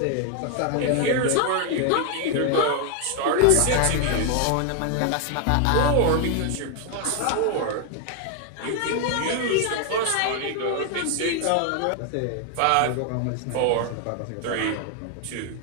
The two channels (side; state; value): both; different; correlation 0.01